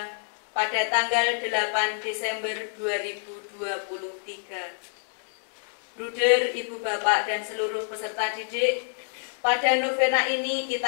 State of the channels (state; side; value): silent; right; digital silence